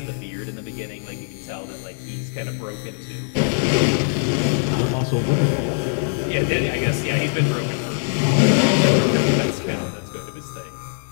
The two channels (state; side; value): silent; right; 60 dB below the other